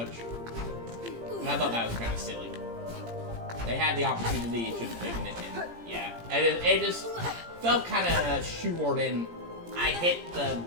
And I thought that was kind of silly. They had the opportunity, it should have taken it, and yeah. It just felt kind of shoehorned in. I hit the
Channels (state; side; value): late; left; 17 ms